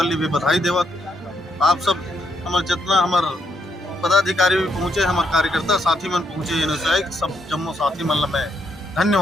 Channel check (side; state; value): both; normal; correlation 0.76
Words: भी बधाई देवत। आप सब हमारे जितना हमारे पदाधिकारी भी पहुँचे, हमारे कार्यकर्ता साथी मन पहुँचे, ये सब जम्मो साथी मन ला मैं